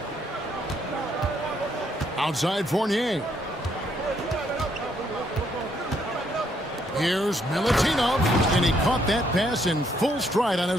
Outside Fournier. Here's Milutinov, and he caught that pass in full stride on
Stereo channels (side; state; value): both; normal; correlation 0.72